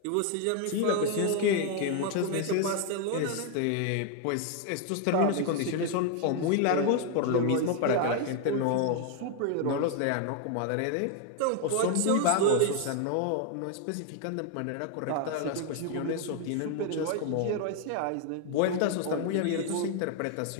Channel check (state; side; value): different; both; correlation 0.00